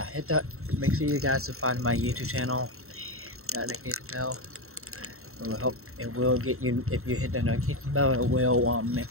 hit that. Make sure you guys subscribe to my YouTube channel. That notification bell. It will help. It will get you. If you hit the notification bell, it will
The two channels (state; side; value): late; left; 0.63 ms